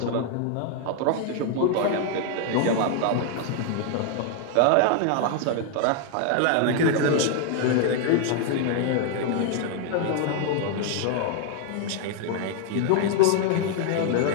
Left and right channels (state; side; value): different; both; correlation 0.00